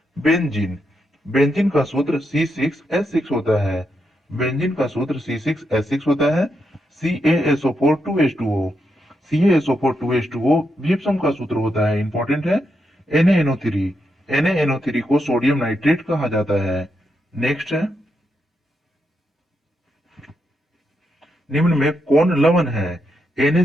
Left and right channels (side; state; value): both; normal; correlation 0.82